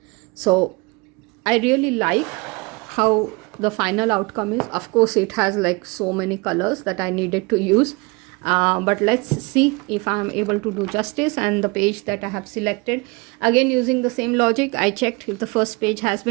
So I really like how the final outcome is. Of course, it has like so many colors that I needed to use. but let's see if I'm able to do justice. And the page that I have selected, again using the same logic, I checked if the first page has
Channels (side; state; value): left; quieter; 27.1 dB